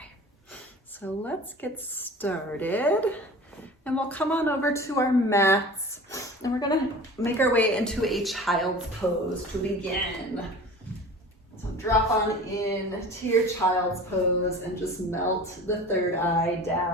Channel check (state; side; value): normal; both; correlation 0.39